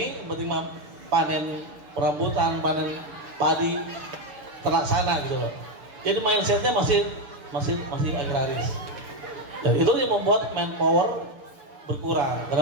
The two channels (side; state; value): left; late; 6.7 ms